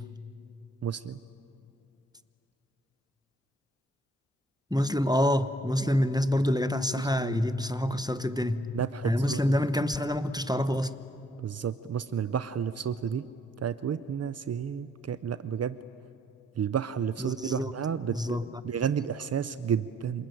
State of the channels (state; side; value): normal; both; correlation 0.66